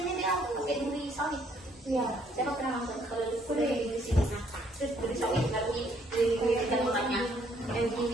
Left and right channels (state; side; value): normal; both; correlation 0.66